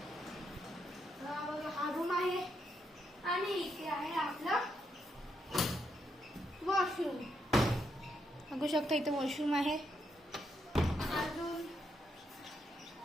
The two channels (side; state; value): both; normal; correlation 0.79